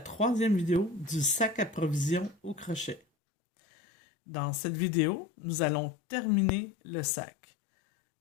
vidéo du sac à provisions au crochet. Dans cette vidéo, nous allons terminer le sac.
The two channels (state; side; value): drops out; right; at 3.0 s